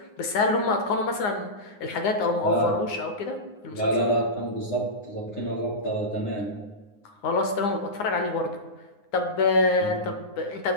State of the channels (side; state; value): right; late; 9.7 ms